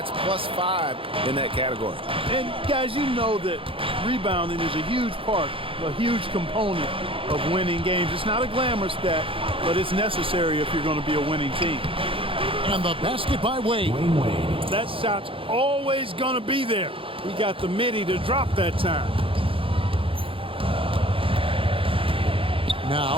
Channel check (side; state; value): left; late; 0.26 ms